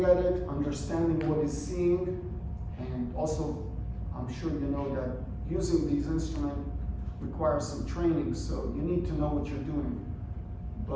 at it, understanding what he's seeing, And also, I'm sure you know that using these instruments requires some training, so you need to know what you're doing.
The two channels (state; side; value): identical; both; correlation 1.00